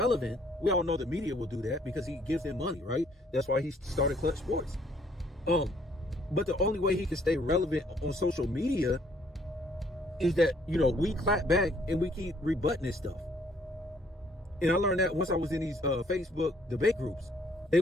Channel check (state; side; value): normal; both; correlation 0.64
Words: we all know the media will do that because he gives them money, right? That's why he started Clutch Sports. But the only way he can stay relevant on social media is that, we clap back and we keep rebutting this stuff. And I learned that once I was in these Facebook debate groups. They